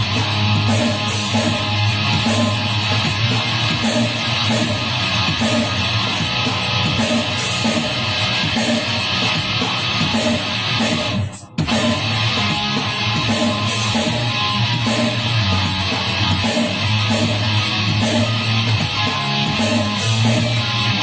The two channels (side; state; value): both; identical; correlation 1.00